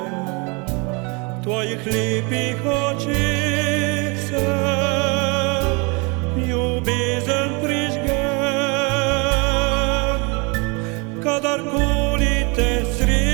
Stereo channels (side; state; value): left; quieter; 30.4 dB